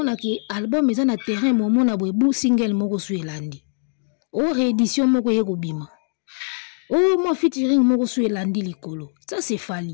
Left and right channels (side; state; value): right; silent; digital silence